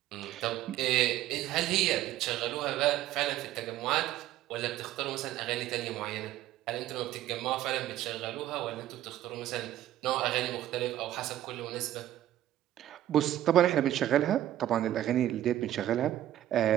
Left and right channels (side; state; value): left; quieter; 13.1 dB